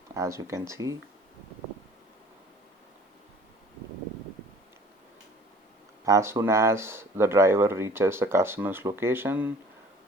as you can see. As soon as the driver reaches the customer's location,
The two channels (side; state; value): both; normal; correlation 0.50